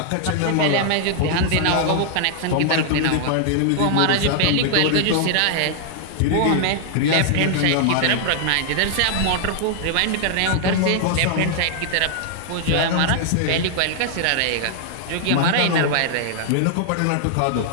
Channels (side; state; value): both; different; correlation -0.01